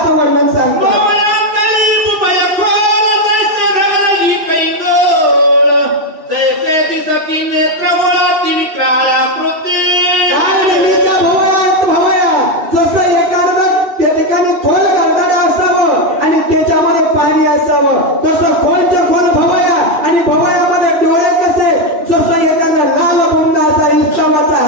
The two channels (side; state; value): left; late; 3.0 ms